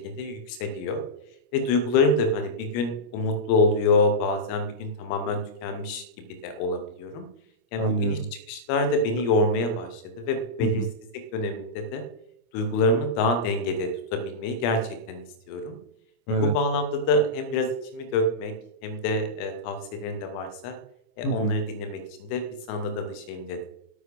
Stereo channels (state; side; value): late; right; 25 ms